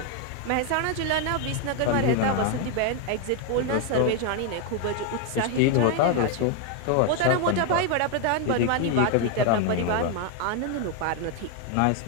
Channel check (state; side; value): different; both; correlation 0.01